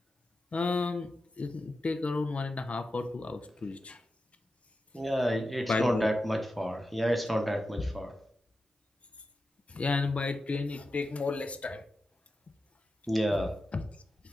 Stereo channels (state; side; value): normal; both; correlation 0.91